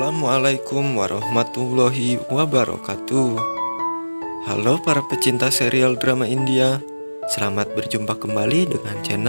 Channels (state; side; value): inverted; both; correlation -1.00